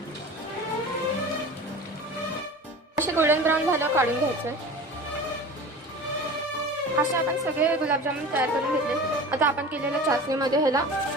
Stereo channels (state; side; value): normal; both; correlation 0.36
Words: असे गोल्डन ब्राऊन झाल्यावर काढून घ्यायचं. असे आपण सगळे गुलाबजामुन तयार करून घेतले. आता आपण केलेल्या चाचणीमध्ये ह्याला